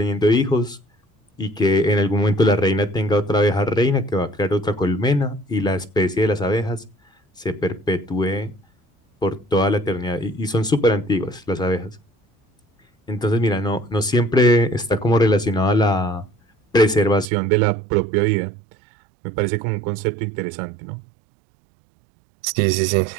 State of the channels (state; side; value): drops out; left; at 17.2 s